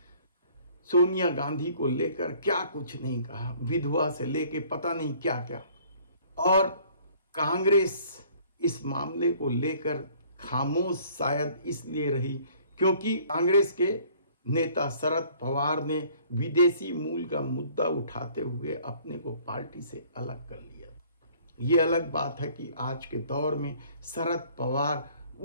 सोनिया गांधी को लेकर क्या कुछ नहीं कहा, विधवा से लेके पता नहीं क्या क्या। और कांग्रेस इस मामले को लेकर खामोश शायद इसलिए रही क्योंकि कांग्रेस के नेता शरद पवार ने विदेशी मूल का मुद्दा उठाते हुए अपने को पार्टी से अलग कर लिया। ये अलग बात है कि आज के दौर में शरद पवार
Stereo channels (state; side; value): inverted; both; correlation -0.56